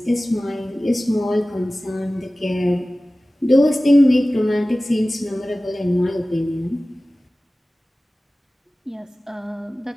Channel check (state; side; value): normal; both; correlation 0.97